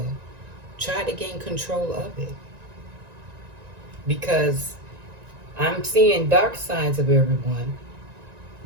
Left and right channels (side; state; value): left; late; 1.9 ms